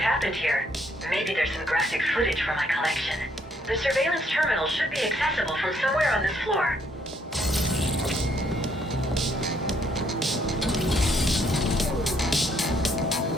here. Maybe there's some graphic footage from my collection. The surveillance terminal should be accessible from somewhere on this floor.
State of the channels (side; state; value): both; normal; correlation 0.69